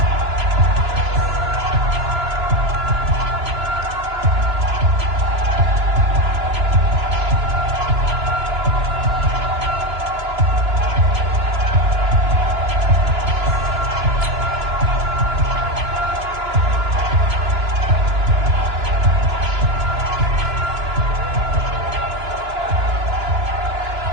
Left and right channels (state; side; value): late; left; 2.9 ms